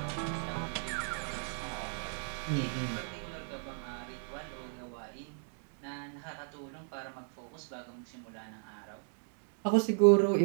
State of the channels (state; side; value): silent; left; 54 dB below the other